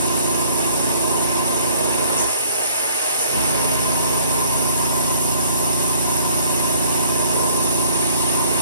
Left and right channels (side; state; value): both; inverted; correlation -0.53